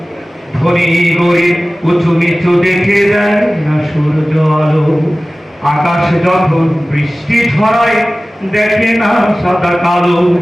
ধনী গরিব উঁচু নিচু দেখে দেয় না সূর্য আলো। আকাশ যখন বৃষ্টি ছড়ায় দেখে না সাদা কালো,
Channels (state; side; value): normal; both; correlation 0.97